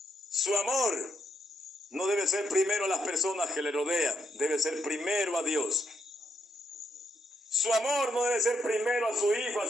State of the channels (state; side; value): normal; both; correlation 0.78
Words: Su amor no debe ser primero a las personas que le rodean, debe ser primero a Dios. Su amor no debe ser primero a su hijo, a